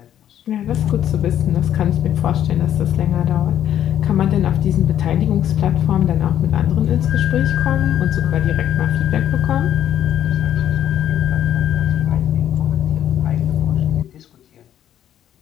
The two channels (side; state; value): right; quieter; 10.7 dB